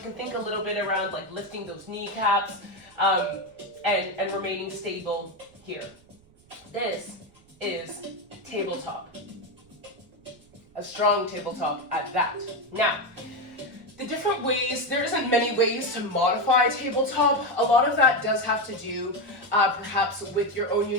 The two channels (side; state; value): right; noise; rumble, 29 dB below the sound